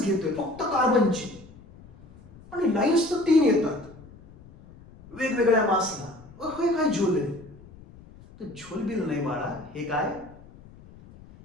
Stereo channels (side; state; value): left; noise; rumble, 21 dB below the sound